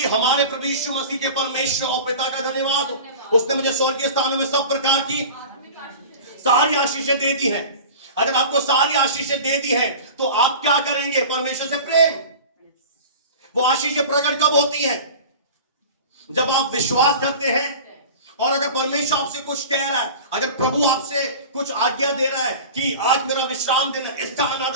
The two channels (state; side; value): inverted; both; correlation -0.37